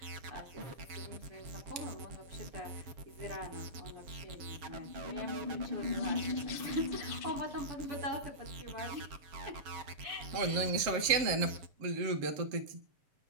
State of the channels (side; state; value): left; late; 7.6 ms